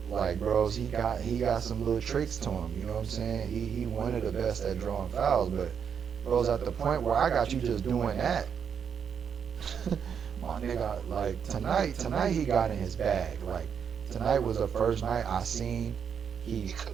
like, bros, he got some little tricks to him. You know what I'm saying? He one of the best at drawing fouls. But, bros, at the point where I got you just doing that, my nigga, like, tonight he got in his bag. Like, tonight was the first night I seen He could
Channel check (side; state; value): left; quieter; 7.4 dB